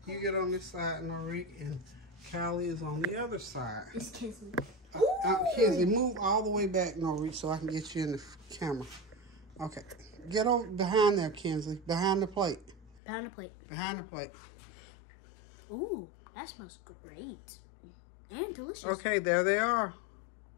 on this side, Norique, and Callie is on the other side. It's Kinsley. Kinsley, move all the way back, Norique, so I can get you in the camera. Okay, get over behind there, Kinsley. Behind the plate. Behind the plate. Behind the plate. Ooh, that smells great and delicious. Okay, there they are.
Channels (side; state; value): right; drops out; at 13.0 s